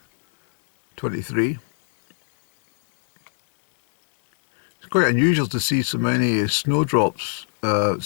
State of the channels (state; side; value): silent; right; digital silence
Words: 23, it's quite unusual to see so many snowdrops